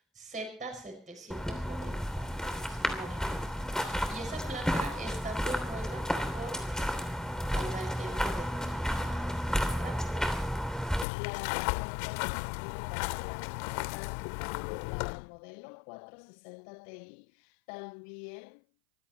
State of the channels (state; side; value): drops out; right; at 11.1 s